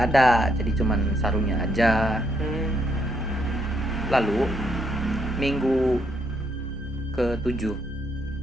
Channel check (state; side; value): normal; both; correlation 0.74